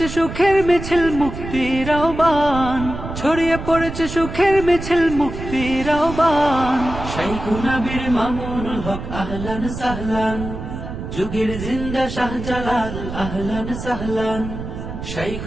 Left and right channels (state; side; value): noise; right; rumble, 8 dB below the sound